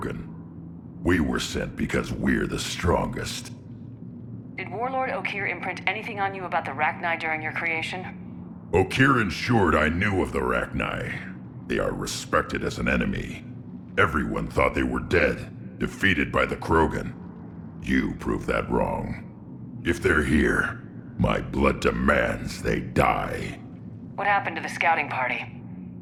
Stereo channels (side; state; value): both; identical; correlation 1.00